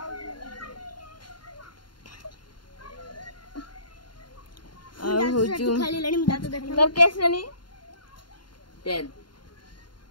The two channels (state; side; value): late; right; 0.71 ms